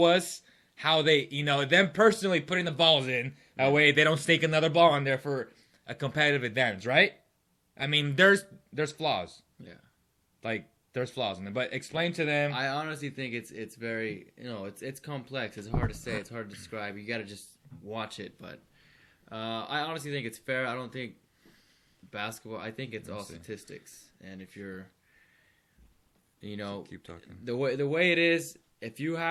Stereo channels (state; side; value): identical; both; correlation 1.00